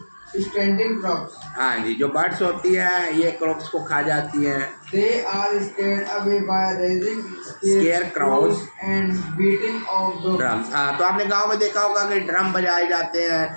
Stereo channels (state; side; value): inverted; both; correlation -1.00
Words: standing crops। हाँ जी, जो बर्ड्स होती है ये क्रॉप्स को खा जाती हैं। They are scared away by raising scarecrows and beating of the drums। हाँ, तो आपने गांव में देखा होगा कि ड्रम बजाए जाते हैं